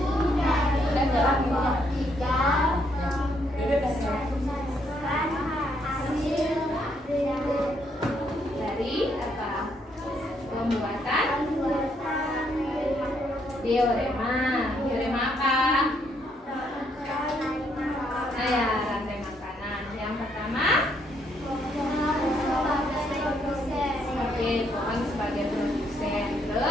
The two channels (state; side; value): normal; both; correlation 0.73